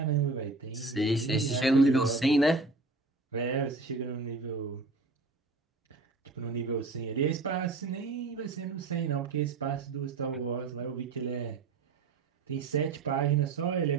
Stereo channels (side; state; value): left; quieter; 3.6 dB